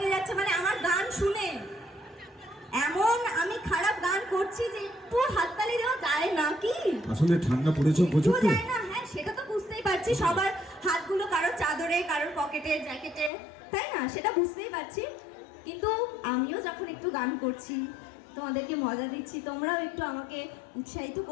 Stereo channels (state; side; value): drops out; right; at 13.3 s